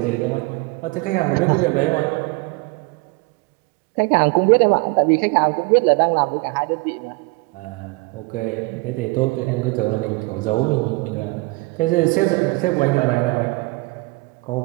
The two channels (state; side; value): quieter; left; 25.4 dB